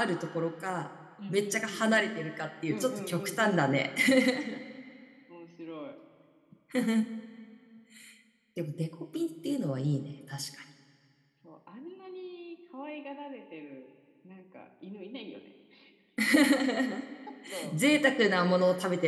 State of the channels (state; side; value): identical; both; correlation 1.00